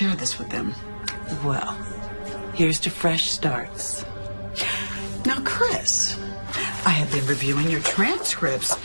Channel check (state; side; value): inverted; both; correlation -1.00